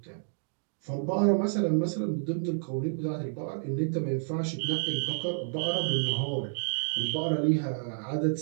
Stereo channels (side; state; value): left; silent; digital silence